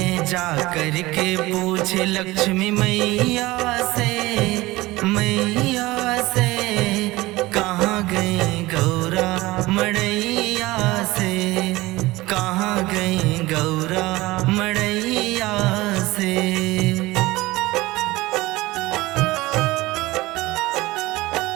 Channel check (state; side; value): quieter; left; 19.7 dB